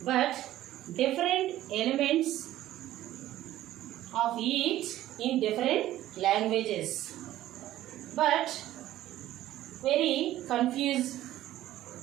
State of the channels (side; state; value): left; quieter; 14.0 dB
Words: but different elements of each in different languages, but very confused.